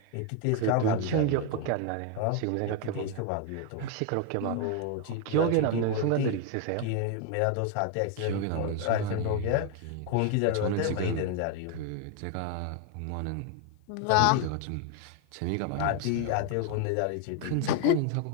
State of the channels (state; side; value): different; both; correlation 0.01